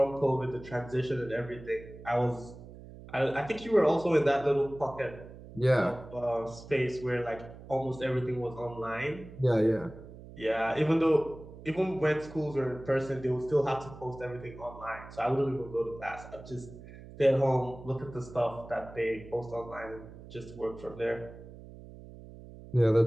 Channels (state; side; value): noise; right; hum, 16 dB below the sound